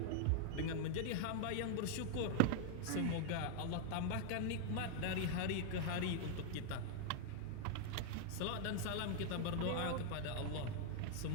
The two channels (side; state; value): both; different; correlation 0.00